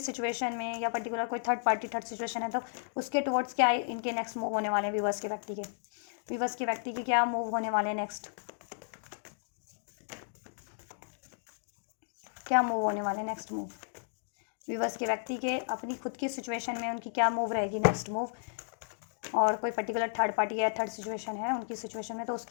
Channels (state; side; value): silent; right; digital silence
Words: में या पर्टिकुलर कोई थर्ड पार्टी थर्ड सिचुएशन है तो उसके टुवर्ड्स क्या इनके नेक्स्ट मूव होने वाले हैं, व्यूवर्स के व्यक्ति के क्या मूव होने वाले हैं नेक्स्ट, क्या मूव होने वाले नेक्स्ट मूव, व्यूवर्स के व्यक्ति के अपनी खुद की सिचुएशन में उनकी क्या मूव रहेगी नेक्स्ट मूव, और कोई पर्टिकुलर थर्ड पार्टी या थर्ड सिचुएशन है उनकी सिचुएशन में तो